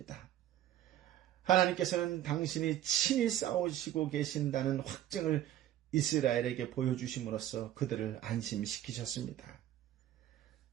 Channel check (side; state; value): left; quieter; 12.4 dB